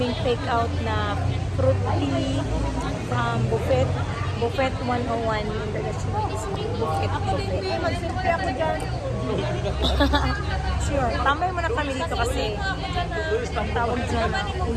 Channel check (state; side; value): identical; both; correlation 1.00